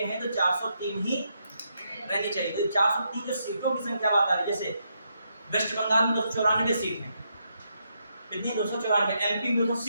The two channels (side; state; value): both; inverted; correlation -0.80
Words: हैं तो 403 ही रहनी चाहिए। तो 403 जो सीटों की संख्या बात आ रही है, जैसे वेस्ट बंगाल में 294 सीट है, कितनी 294, एमपी में